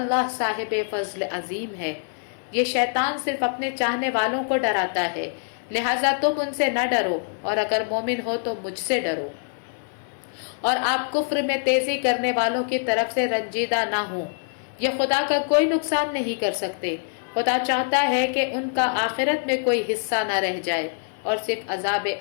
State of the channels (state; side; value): silent; right; digital silence